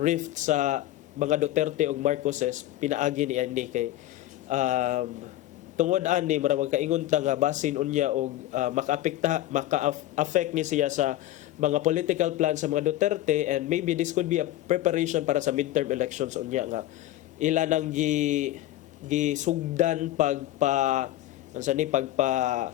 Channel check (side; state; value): right; quieter; 14.6 dB